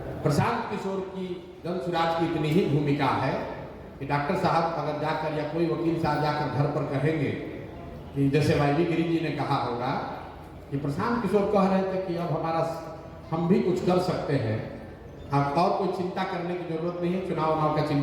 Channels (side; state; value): both; identical; correlation 1.00